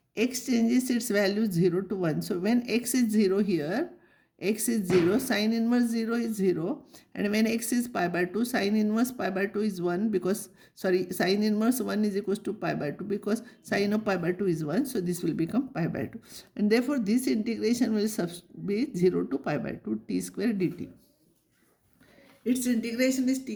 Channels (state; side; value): identical; both; correlation 1.00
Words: x changes its value 0 to 1. So when x is 0 here, x is 0, sin inverse 0 is 0. And when x is pi by 2, sin inverse pi by 2 is 1 because, sin inverse 1 is equals to pi by 2 because sin of pi by 2 is 1. So this will become pi by 2. And therefore this integration will be 0 to pi by 2 t square dt. Its integration is